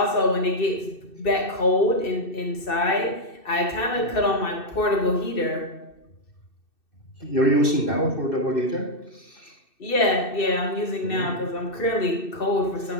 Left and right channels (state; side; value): late; right; 2.6 ms